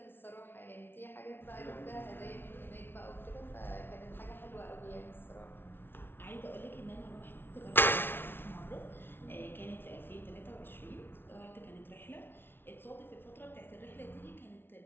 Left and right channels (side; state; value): right; late; 0.11 ms